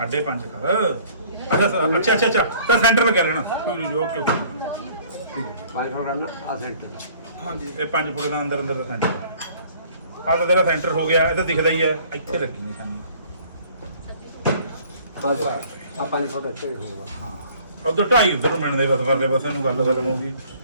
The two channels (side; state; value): both; inverted; correlation -0.54